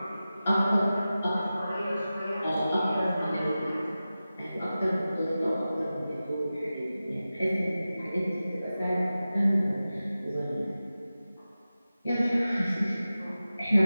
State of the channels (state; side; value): inverted; both; correlation -0.95